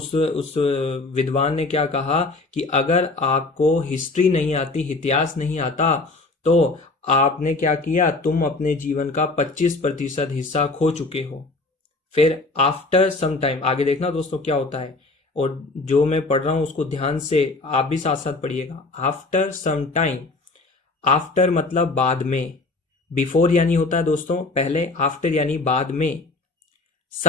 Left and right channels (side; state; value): right; quieter; 3.3 dB